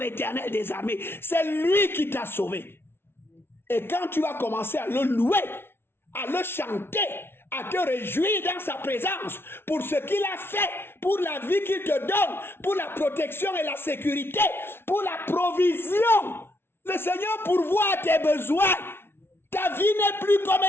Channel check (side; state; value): right; late; 0.11 ms